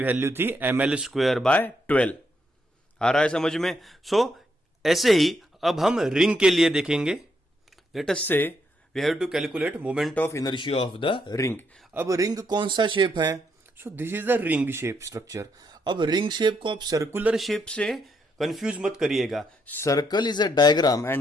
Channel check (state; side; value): normal; both; correlation 0.77